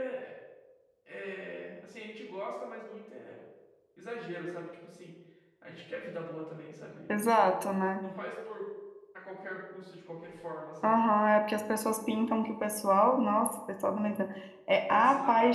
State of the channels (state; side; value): identical; both; correlation 1.00